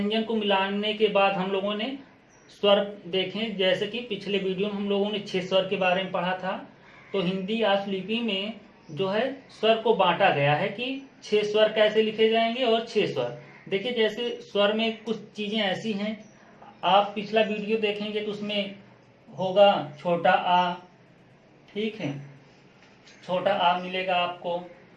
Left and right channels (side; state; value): both; identical; correlation 1.00